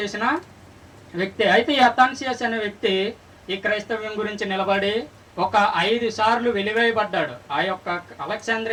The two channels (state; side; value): identical; both; correlation 1.00